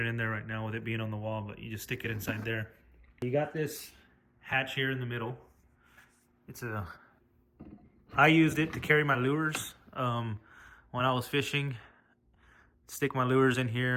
in there right now with it being on the wall, but you just stick it inside there. You got this hatch here in the middle. I used it to carry my lures when I was fishing. Stick my lures in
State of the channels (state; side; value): identical; both; correlation 1.00